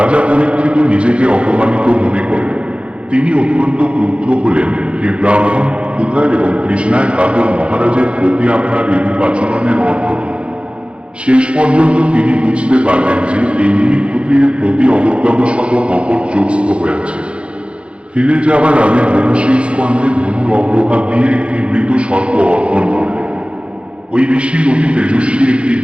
পরীক্ষিত নিজেকে অপমানিত মনে করেন। তিনি অত্যন্ত ক্রুদ্ধ হলেন, হে ব্রাহ্মণ, ক্ষুধার এবং তৃষ্ণায় কাতর মহারাজের প্রতি আপনার এরূপ আচরণের অর্থ কি? শেষ পর্যন্ত তিনি বুঝতে পারলেন যে এই মুনি ক্ষত্রিয়ের প্রতি অবজ্ঞাবশত কপট যোগস্থ হয়েছে। ফিরে যাওয়ার আগে মহর্ষি স্কন্ধে ধনুর অগ্রভাগ দিয়ে একটি মৃত সর্প অর্পণ করলেন। ওই ঋষির অতি তেজস্বী একটি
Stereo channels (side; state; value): left; late; 0.059 ms